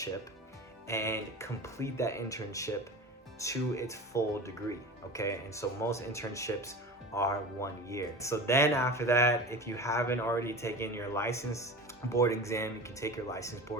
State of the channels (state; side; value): normal; both; correlation 0.33